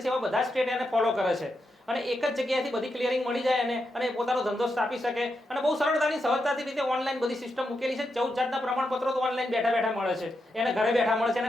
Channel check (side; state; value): both; normal; correlation 0.85